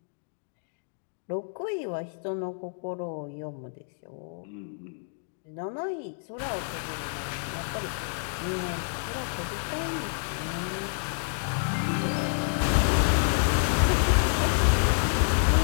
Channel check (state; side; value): silent; right; digital silence